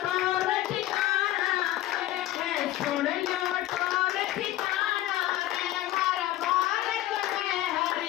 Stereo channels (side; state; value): right; quieter; 14.9 dB